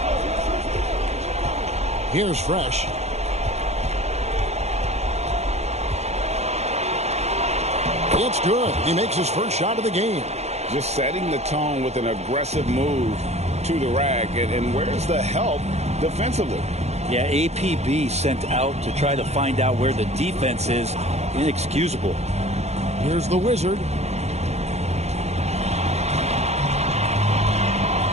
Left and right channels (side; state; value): left; late; 0.31 ms